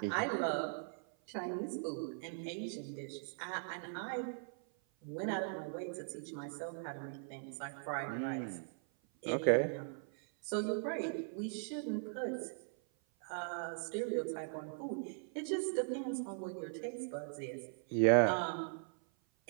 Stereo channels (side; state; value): left; silent; 51 dB below the other